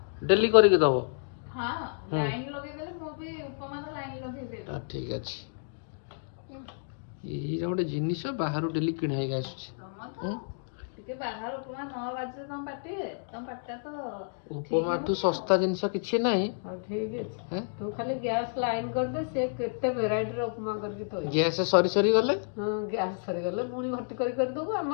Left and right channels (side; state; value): right; silent; digital silence